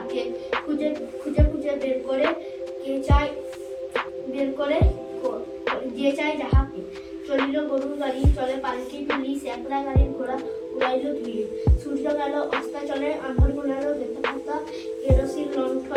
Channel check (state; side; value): identical; both; correlation 1.00